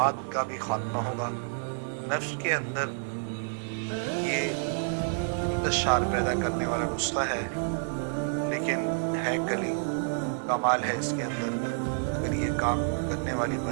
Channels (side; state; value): left; silent; digital silence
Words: का भी खात्मा होगा। नफ्स के अंदर ये इंतशार पैदा करने वाला नुस्खा है, लेकिन है कली, कमाल है इसके अंदर। अगर ये काम करने वाली